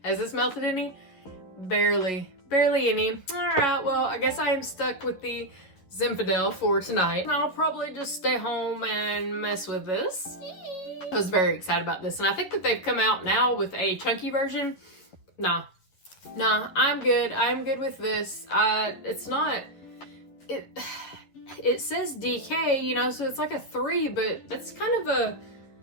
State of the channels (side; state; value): right; late; 11 ms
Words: has this melted any? Barely any. Alright, well, I guess I am stuck with the Zinfandel for tonight. And I'll probably just stay home and mess with this. I was very excited about this, and I think that they've come out now with a chunky version. Nah, I'm good. I'm good with this. It's not... It says DK, you know, so it's like a 3, but that's kind of